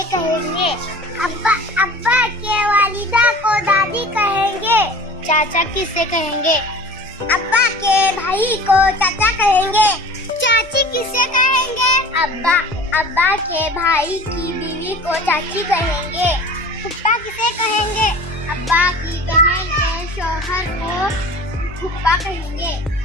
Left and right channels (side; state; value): both; normal; correlation 0.41